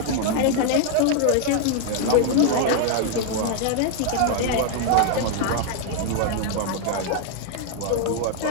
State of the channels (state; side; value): different; both; correlation 0.00